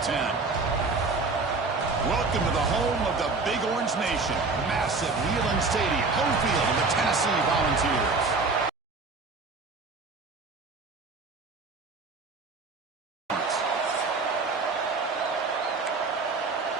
Welcome to the home of the Big Orange Nation. Massive Neyland Stadium, home field of the Tennessee Volunteers.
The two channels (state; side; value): quieter; left; 4.0 dB